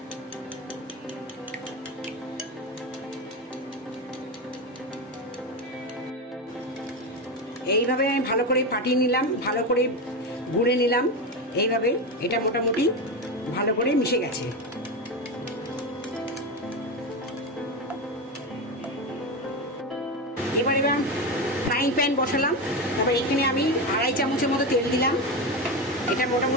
এইভাবে আমি ভালো করে ফাটিয়ে নিলাম, ভালো করে গুঁড়ে নিলাম। এইভাবে এটা মোটামুটি ভালো করে মিশে গেছে। এবার ফ্রাইং প্যান বসালাম, তারপর এখানে আমি 2.5 চামচের মতো তেল দিলাম। এটা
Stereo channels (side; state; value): both; normal; correlation 0.17